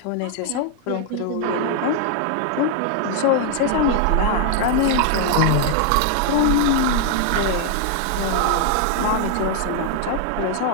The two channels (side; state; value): both; different; correlation 0.00